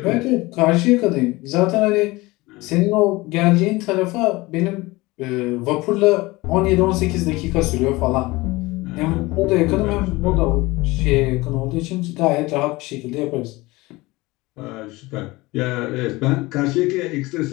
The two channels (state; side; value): quieter; right; 21.4 dB